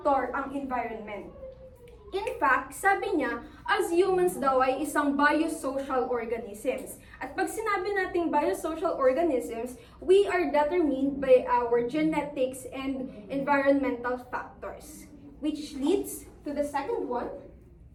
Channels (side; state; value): both; identical; correlation 1.00